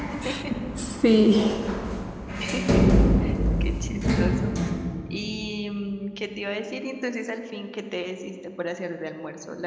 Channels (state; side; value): identical; both; correlation 1.00